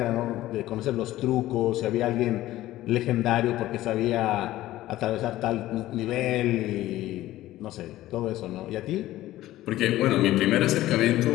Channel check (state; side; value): quieter; right; 15.4 dB